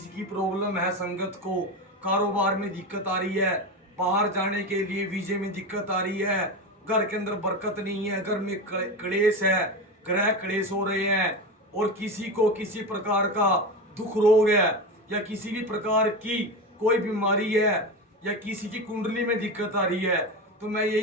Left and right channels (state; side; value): normal; both; correlation 0.21